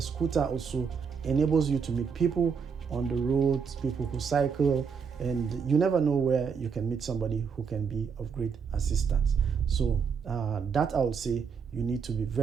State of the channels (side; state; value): left; quieter; 6.2 dB